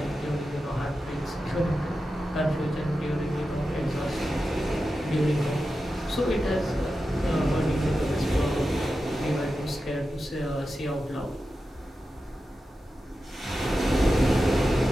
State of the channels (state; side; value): normal; both; correlation 0.91